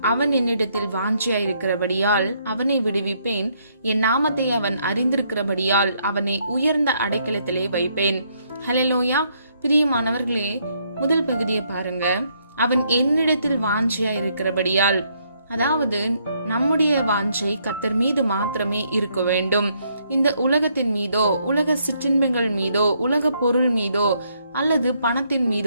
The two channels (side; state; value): both; inverted; correlation -0.72